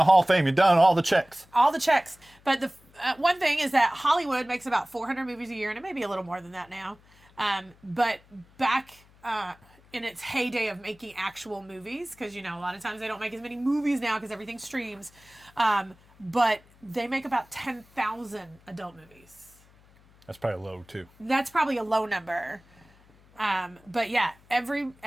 Hall of Fame. You've done all the checks. All the checks. But the one thing is that Hollywood makes about 400 movies a year, and it may be a little more than that now. But back in its heyday of making actual movies, because, a lot of times they don't make as many movies now because everything streams, but they make about 10,000 adult movies. That's probably low, too. That's probably a low number. But yeah, every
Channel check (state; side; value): noise; left; hum, 28 dB below the sound